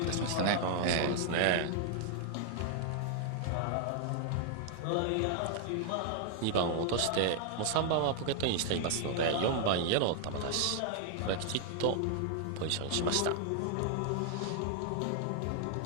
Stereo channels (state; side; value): different; both; correlation 0.00